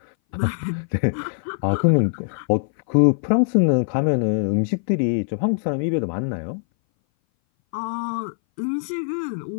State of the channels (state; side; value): silent; right; 59 dB below the other